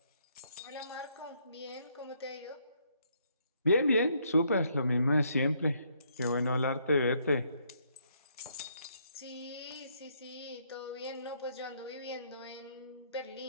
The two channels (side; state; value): both; inverted; correlation -0.71